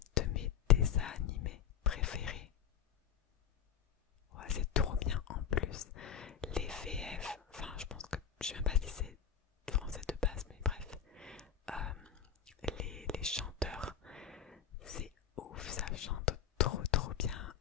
de mes dessins animés préférés. Ouais, c'est trop bien en plus. Les VF, enfin je pense que, je sais même pas si c'est français de base, mais bref, les chanteurs, c'est ouf, ça chante trop bien.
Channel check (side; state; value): right; quieter; 8.5 dB